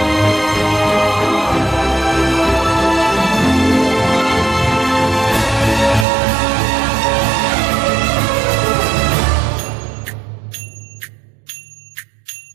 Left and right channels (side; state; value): left; drops out; at 6.1 s